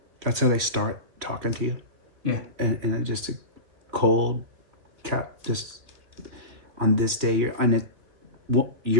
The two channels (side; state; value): left; late; 2.5 ms